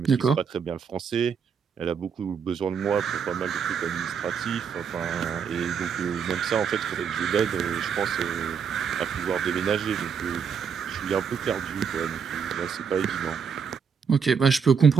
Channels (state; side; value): quieter; left; 6.7 dB